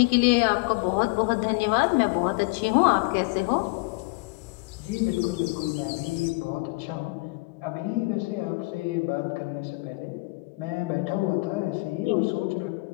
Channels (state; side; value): quieter; right; 27.0 dB